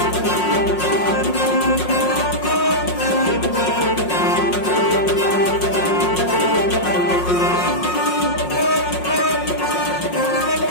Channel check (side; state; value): right; late; 5.5 ms